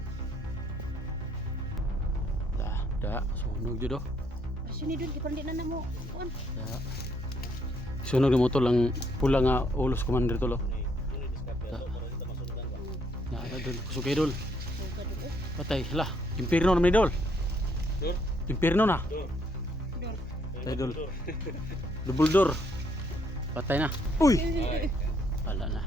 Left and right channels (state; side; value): normal; both; correlation 0.70